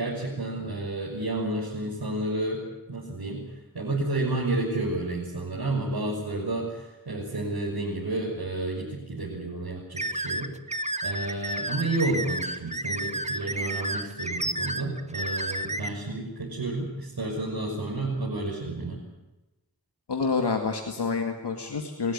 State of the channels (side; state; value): both; normal; correlation 0.01